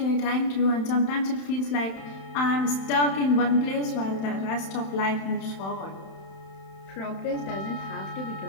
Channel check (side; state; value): right; late; 31 ms